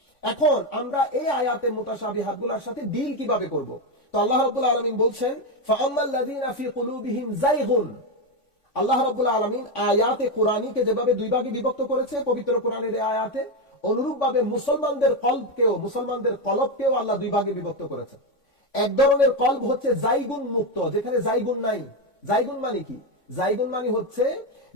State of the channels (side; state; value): right; late; 3.5 ms